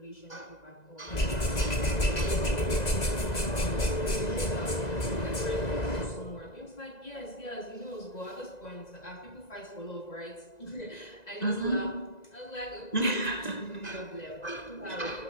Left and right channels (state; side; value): late; right; 1.9 ms